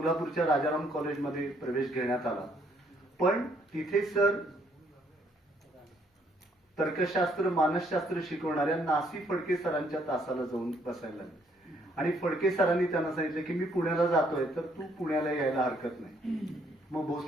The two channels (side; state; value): both; normal; correlation 0.68